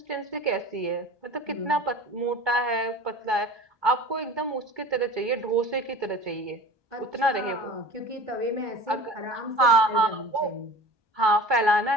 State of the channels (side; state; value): left; late; 1.2 ms